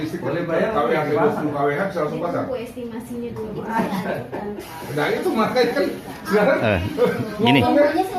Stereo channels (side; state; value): both; identical; correlation 1.00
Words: Boleh dari bayar, KWH boleh 20 KWH bisa langsung pasang. Bu estimasinya dulu. Itu saya ajukan. Nah itu makanya kan sekarang Gini, Semuanya